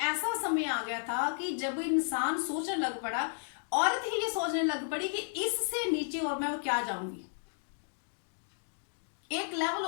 ऐसा समय आ गया था कि जब इंसान सोचने लग पड़ा, औरत ही ये सोचने लग पड़ी कि इससे नीचे और मैं क्या जाऊंगी। एक लेवल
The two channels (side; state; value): right; silent; digital silence